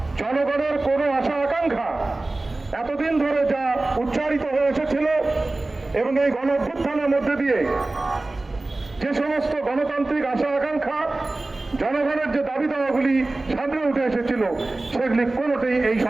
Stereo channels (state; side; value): quieter; left; 3.0 dB